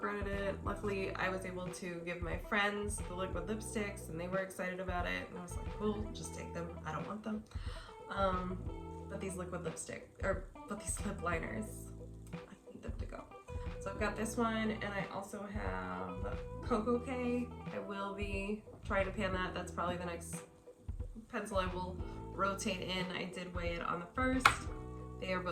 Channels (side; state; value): both; identical; correlation 1.00